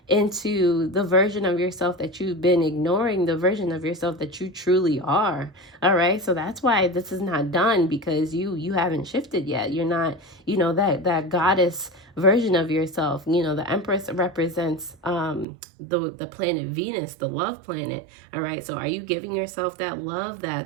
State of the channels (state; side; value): drops out; left; at 15.5 s